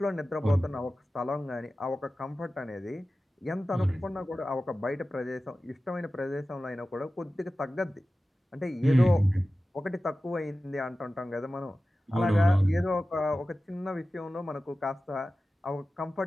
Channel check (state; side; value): normal; both; correlation 0.95